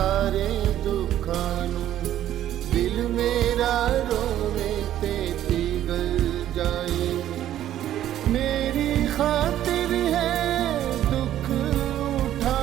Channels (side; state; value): left; quieter; 12.1 dB